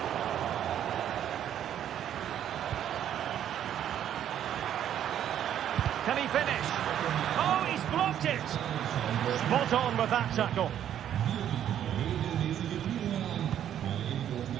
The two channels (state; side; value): quieter; left; 10.4 dB